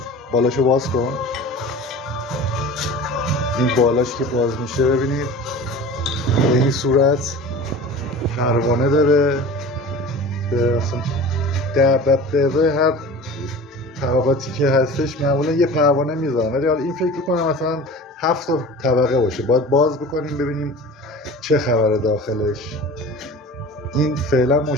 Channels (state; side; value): normal; both; correlation 0.37